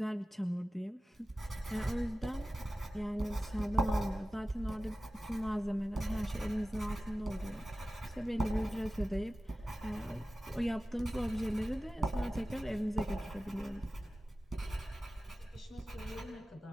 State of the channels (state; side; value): normal; both; correlation 0.96